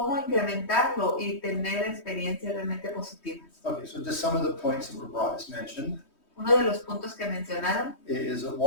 incrementarlo y tener experiencias realmente positivas. Okay, so just some of the points that were brought as mentioned. Uno de los puntos que mencionaron Is that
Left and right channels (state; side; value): late; right; 3.2 ms